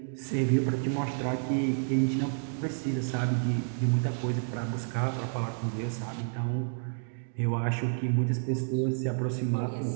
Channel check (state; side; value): silent; left; digital silence